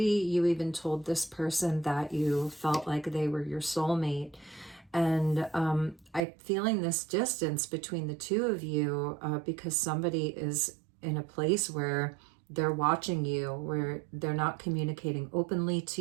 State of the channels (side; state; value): left; drops out; at 6.2 s